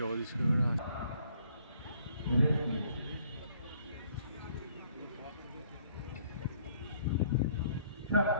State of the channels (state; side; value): inverted; both; correlation -0.63